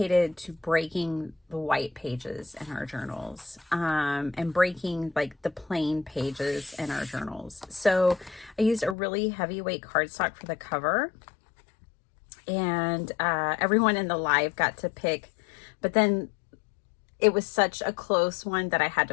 to breaking the white pages in our journals and breaking like the plain pages in our journals. So I used a really heavyweight cardstock for the cover, and everyone in the live got to pick, but then it was such a close one that I had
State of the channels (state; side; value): drops out; right; at 9.0 s